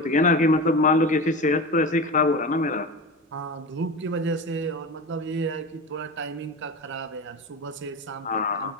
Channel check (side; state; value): both; normal; correlation 0.27